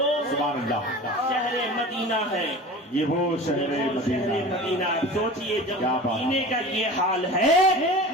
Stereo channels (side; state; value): both; normal; correlation 0.36